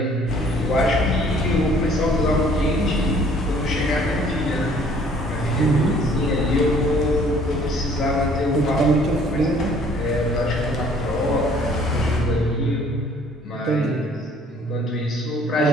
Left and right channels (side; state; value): both; normal; correlation 0.57